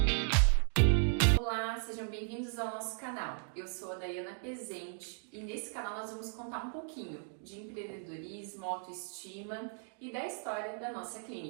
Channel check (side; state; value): left; silent; 54 dB below the other